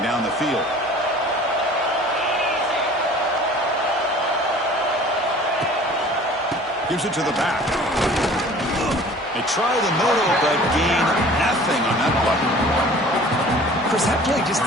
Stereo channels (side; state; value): both; normal; correlation 0.47